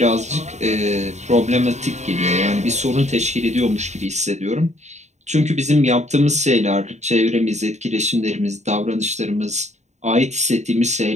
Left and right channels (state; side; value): late; left; 0.33 ms